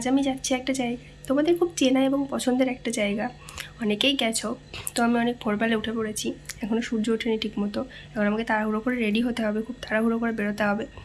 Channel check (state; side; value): identical; both; correlation 1.00